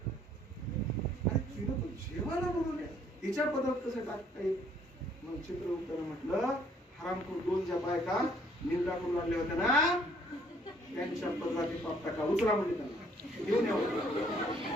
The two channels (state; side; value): normal; both; correlation 0.62